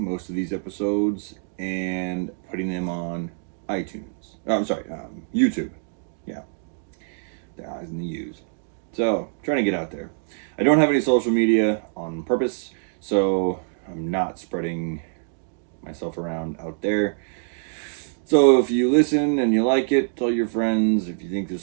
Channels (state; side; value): silent; left; digital silence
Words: most of these episodes and putting them on iTunes. YouTube. Yeah, the I's and the U's. So, trying to get out there. I don't have any social media on purpose, so I'm not spreading myself around out there. So if you listen and you like it, tell your friends. If you think